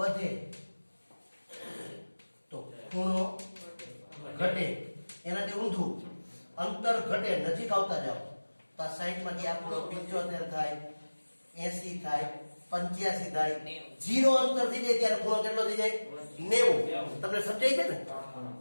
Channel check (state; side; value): inverted; both; correlation -1.00